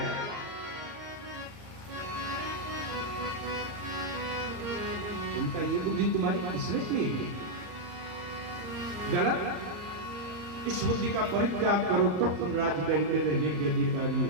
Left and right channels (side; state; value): left; late; 34 ms